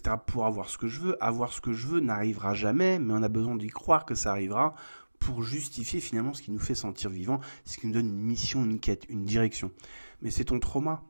pour avoir ce que je veux. Avoir ce que je veux n'arrivera jamais, mais on a besoin d'y croire que ça arrivera pour justifier finalement ce qui nous fait sentir vivant, ce qui nous donne une mission, une quête, une direction. Mais c'est ton trauma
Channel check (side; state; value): both; inverted; correlation -1.00